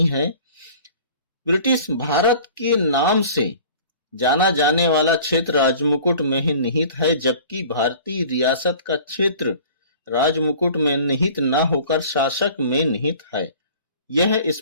है। ब्रिटिश भारत के नाम से जाना जाने वाला क्षेत्र राजमुकुट में ही निहित है, जबकि भारतीय रियासत का क्षेत्र राजमुकुट में निहित न होकर शासक में निहित है। यह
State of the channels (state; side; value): inverted; both; correlation -0.46